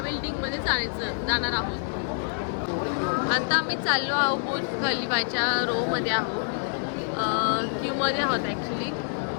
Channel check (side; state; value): right; silent; digital silence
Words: बिल्डिंगमध्ये जाणार आहोत. आता आम्ही चाललो आहोत बुर्ज खलिफाच्या रोमध्ये आहोत. क्यूमध्ये आहोत ॲक्च्युली.